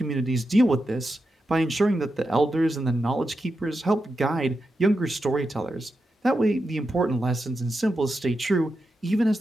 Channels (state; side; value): normal; both; correlation 0.88